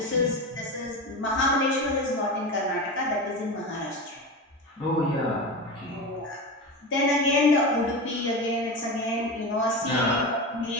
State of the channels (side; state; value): both; normal; correlation 0.24